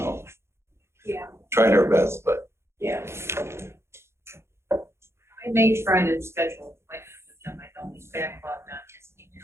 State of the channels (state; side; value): late; left; 0.13 ms